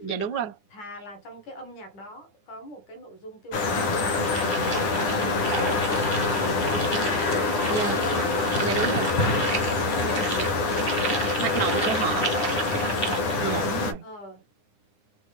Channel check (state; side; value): late; right; 9.7 ms